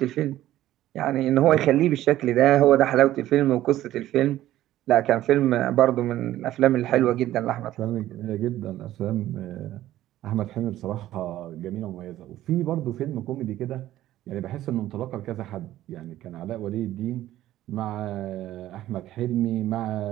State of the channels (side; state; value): left; quieter; 14.0 dB